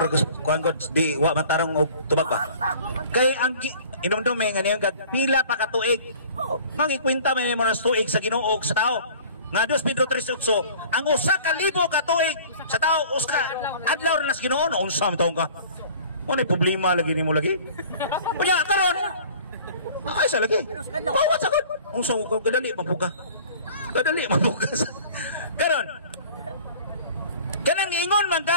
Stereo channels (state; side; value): inverted; both; correlation -0.47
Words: kuan god di wa matarong og tubag ba. Kay ang inomdom nga niya pila pa ka tuig. Mangikwenta may mga tuig sa Ginoo sa tao. Nga 2 Pedro 3:8 ang usa ka libo ka tuig sa tao uska adlaw ra nas Ginoo no unsa man taong ka. Mo problema lagi nimo lagi. Unya karon. Ay sa lagi. Wa sa gud. Unsa ko kadali mabuka. Kadali mabuka. Karon kanang ingon man